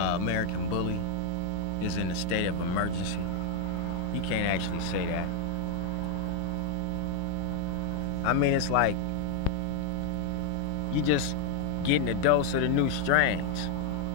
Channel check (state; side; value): different; both; correlation 0.00